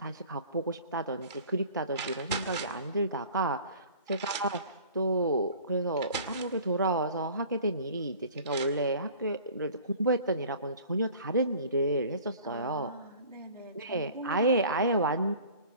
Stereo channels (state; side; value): inverted; both; correlation -0.46